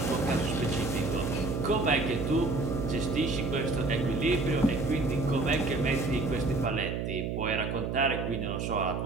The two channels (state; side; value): noise; right; hum, 2 dB below the sound